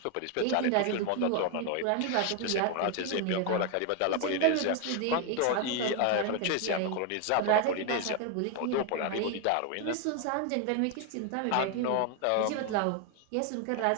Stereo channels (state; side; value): different; both; correlation 0.01